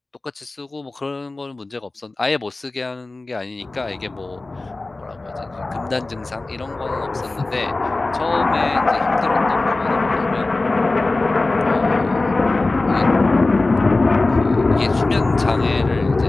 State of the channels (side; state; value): right; quieter; 3.2 dB